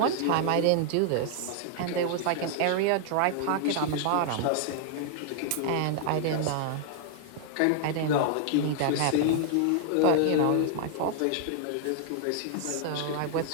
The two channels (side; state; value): both; different; correlation 0.00